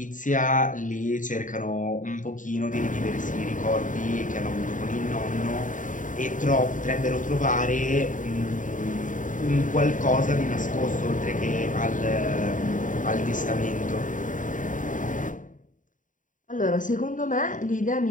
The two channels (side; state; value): right; late; 0.38 ms